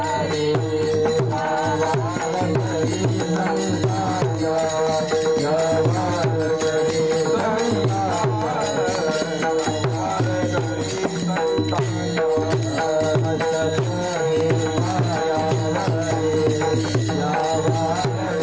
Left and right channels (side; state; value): right; noise; hum, 18 dB below the sound